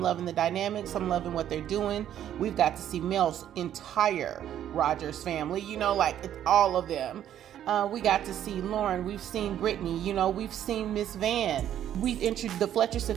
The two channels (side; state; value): left; quieter; 10.8 dB